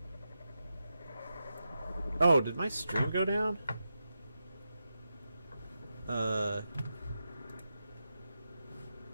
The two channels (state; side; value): inverted; both; correlation -0.88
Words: oh, did my stream go down?